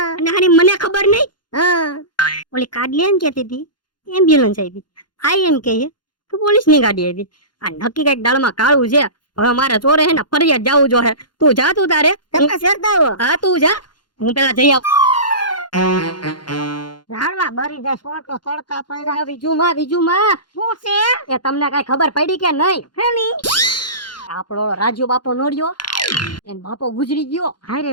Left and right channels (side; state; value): right; late; 0.71 ms